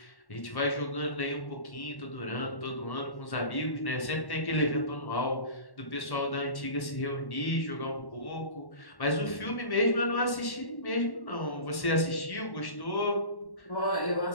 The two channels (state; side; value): late; right; 1.1 ms